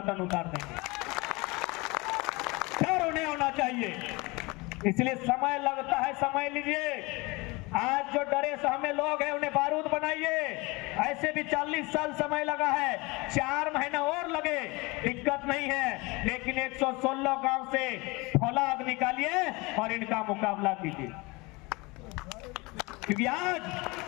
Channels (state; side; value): quieter; right; 24.9 dB